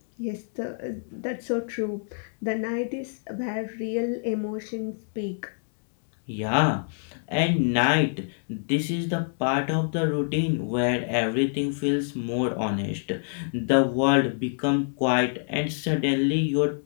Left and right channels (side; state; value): right; silent; digital silence